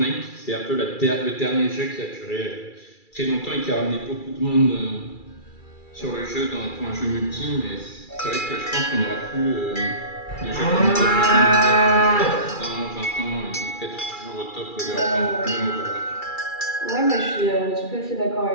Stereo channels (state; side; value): late; right; 2.3 ms